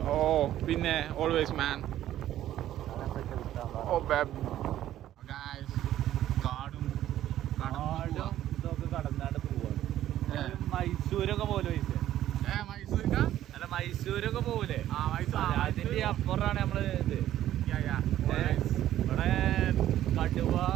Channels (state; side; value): quieter; left; 12.6 dB